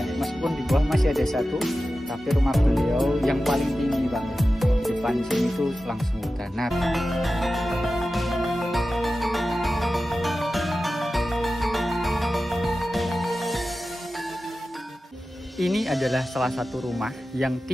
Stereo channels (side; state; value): both; normal; correlation 0.94